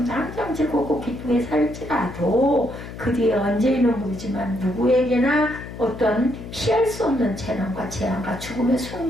당장 즐겁고 기쁘게 살지라도 그 뒤에 언제인은 모르지만 누구에게나 어떤 피할 수 없는 재난과 재앙과 죽음의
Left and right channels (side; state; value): left; noise; hum, 12 dB below the sound